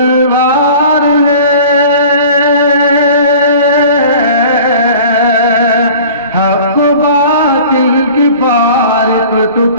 ہے، حق و باطل کی فارق تو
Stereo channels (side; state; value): both; inverted; correlation -0.44